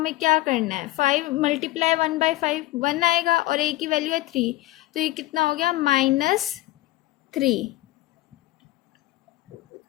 क्या करना है? 5 मल्टीप्लाई 1/5 1 आएगा, और a की वैल्यू है 3, तो ये कितना हो गया? -3।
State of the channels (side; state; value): right; quieter; 17.8 dB